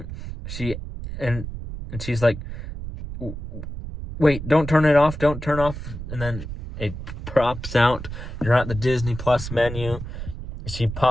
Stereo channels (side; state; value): right; noise; rumble, 9 dB below the sound